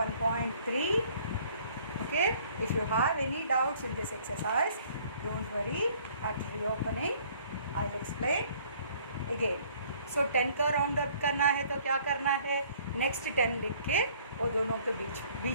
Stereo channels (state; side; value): inverted; both; correlation -0.58